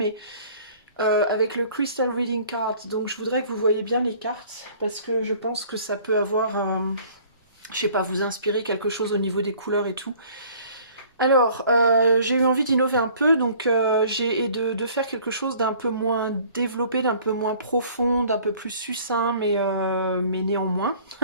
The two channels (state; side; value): inverted; both; correlation -0.53